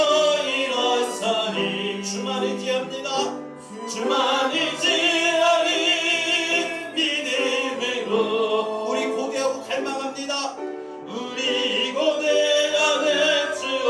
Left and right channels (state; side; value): identical; both; correlation 1.00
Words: 일어서리 주만 의지합니다. 주만 의지하리 믿음으로 우리 고대하고 갈망합니다. 우리 고대하는